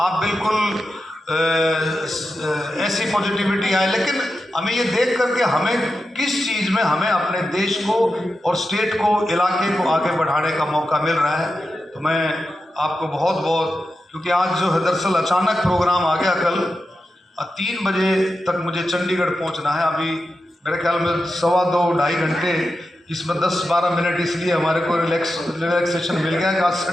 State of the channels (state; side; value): normal; both; correlation 0.90